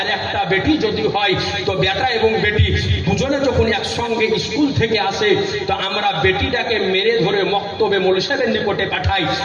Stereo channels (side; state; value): both; identical; correlation 1.00